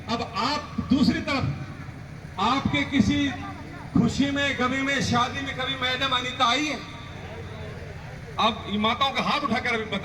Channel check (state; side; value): identical; both; correlation 1.00